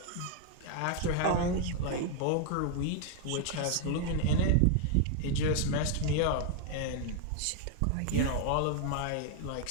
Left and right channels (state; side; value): different; both; correlation 0.00